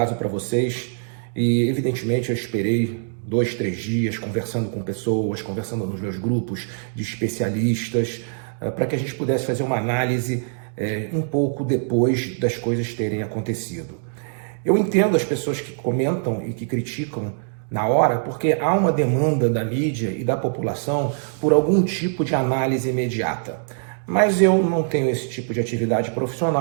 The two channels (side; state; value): left; silent; digital silence